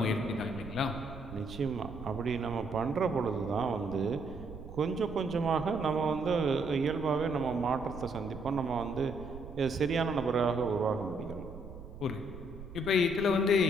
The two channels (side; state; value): right; noise; rumble, 13 dB below the sound